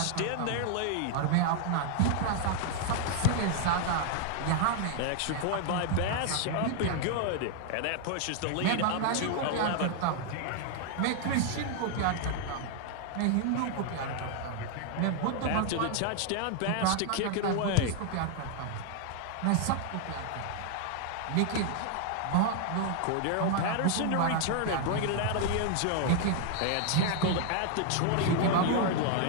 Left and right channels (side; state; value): both; different; correlation 0.00